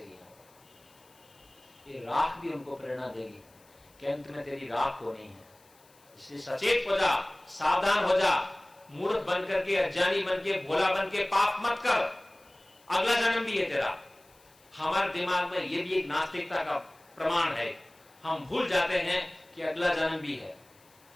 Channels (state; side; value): noise; left; hiss, 29 dB below the sound